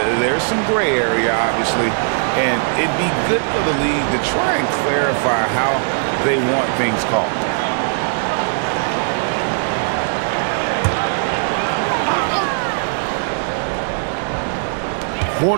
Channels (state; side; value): silent; left; digital silence